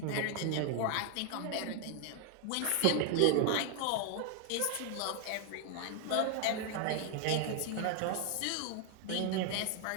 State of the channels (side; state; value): both; different; correlation 0.00